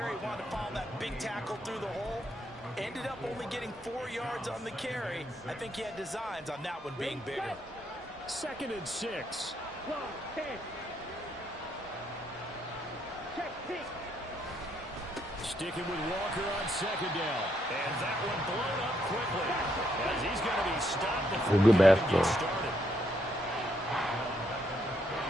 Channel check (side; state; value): both; normal; correlation 0.75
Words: Wanted to follow that big tackle through the hole. Ended up only getting 4 yards on the carry. I think he had designs on that one being bigger. 2nd and 6. Sticking with Walker on 2nd down. And that one blown up quickly, as he's going to be stopped before good he basketball. gets started.